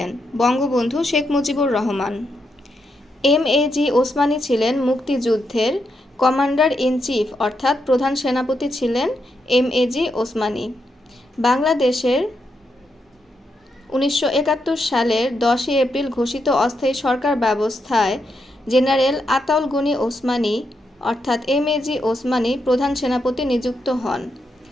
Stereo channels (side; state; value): both; normal; correlation 0.82